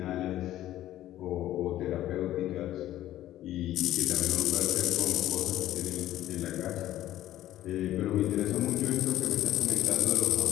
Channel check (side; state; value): right; quieter; 13.6 dB